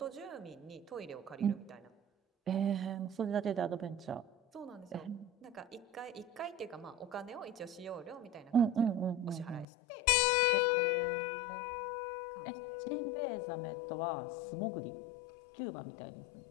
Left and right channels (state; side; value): drops out; right; at 9.7 s